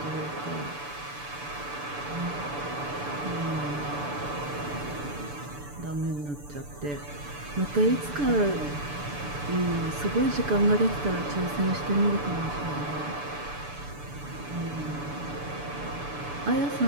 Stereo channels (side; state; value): left; late; 6.9 ms